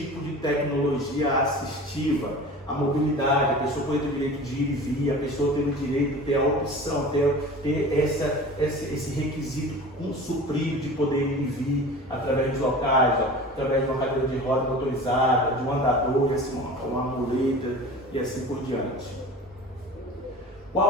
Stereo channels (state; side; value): normal; both; correlation 0.37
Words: de tecnologia assistiva. A mobilidade, a pessoa pode ter o direito de ir e vir, a pessoa tem o direito de ter a opção, ter esse requisito suprido de poder ir e vir através dos locais, através de uma cadeira de roda motorizada, de um andador, uma muleta e assim por diante.